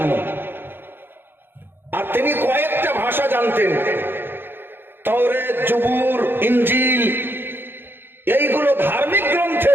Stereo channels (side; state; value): left; late; 0.10 ms